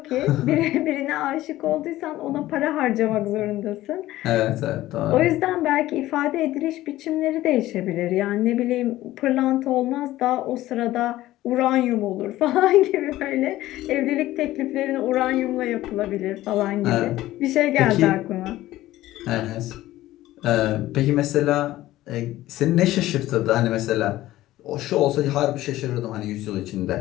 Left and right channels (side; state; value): right; quieter; 15.6 dB